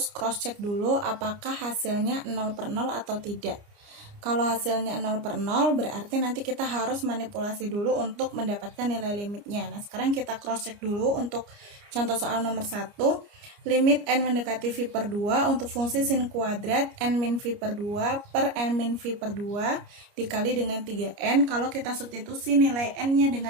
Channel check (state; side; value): late; left; 29 ms